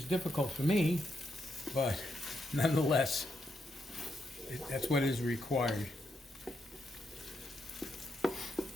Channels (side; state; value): both; normal; correlation 0.81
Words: difficult for me, but nonetheless, that's what is required. All